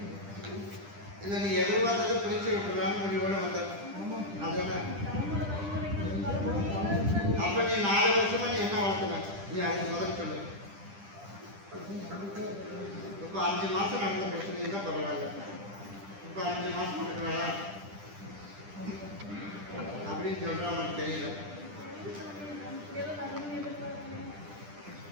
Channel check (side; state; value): left; late; 10 ms